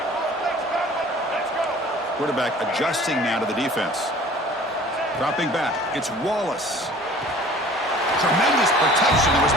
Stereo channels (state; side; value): normal; both; correlation 0.48